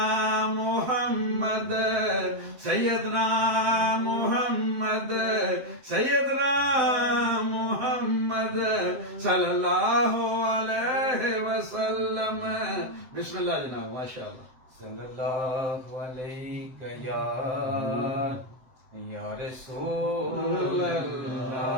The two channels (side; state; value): left; late; 7.7 ms